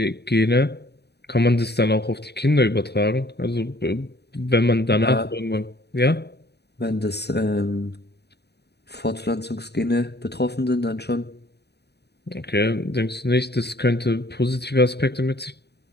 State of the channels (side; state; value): right; late; 0.48 ms